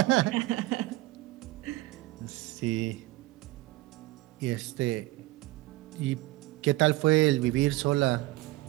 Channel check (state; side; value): quieter; left; 19.2 dB